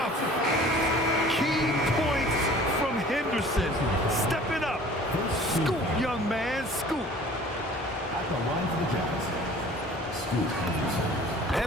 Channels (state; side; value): normal; both; correlation 0.48